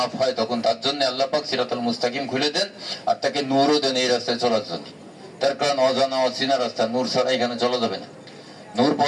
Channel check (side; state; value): both; identical; correlation 1.00